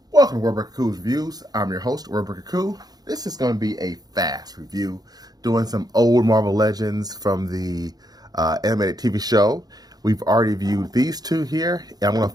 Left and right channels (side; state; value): left; late; 0.19 ms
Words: Welcome to Wordbreaker Coo's Reviews. I'm your host, Wordbreaker Coo. This is going to be a fast review, doing some old Marvel Legends from the animated TV show. We've already viewed these two here, and I'm going to